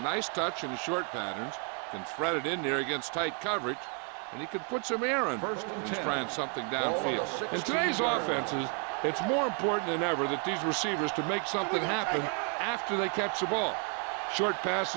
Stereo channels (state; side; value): quieter; left; 39.0 dB